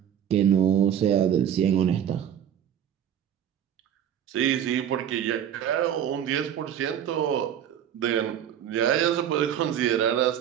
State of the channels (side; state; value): left; quieter; 9.6 dB